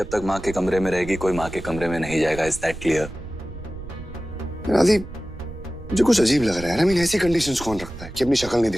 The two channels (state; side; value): noise; right; rumble, 13 dB below the sound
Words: तक माँ के कमरे में रहेगी, कोई माँ के कमरे में नहीं जाएगा। Is that clear? राधी, मुझे कुछ अजीब लग रहा है। आई मीन, ऐसी कंडीशंस कौन रखता है कि अपनी शक्ल नहीं